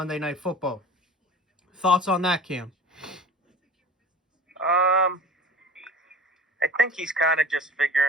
Night Football. Thoughts on that, Cam? I think he's kind of just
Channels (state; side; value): normal; both; correlation 0.40